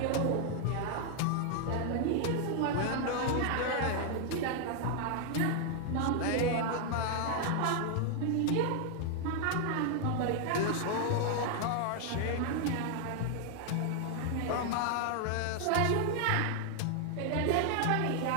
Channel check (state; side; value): different; both; correlation 0.00